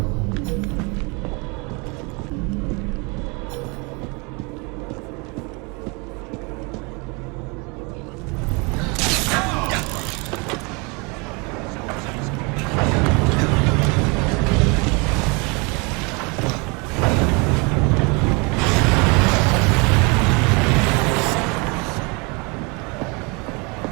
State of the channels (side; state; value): left; quieter; 29.8 dB